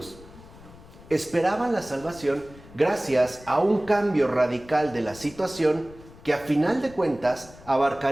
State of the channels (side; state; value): left; noise; rumble, 21 dB below the sound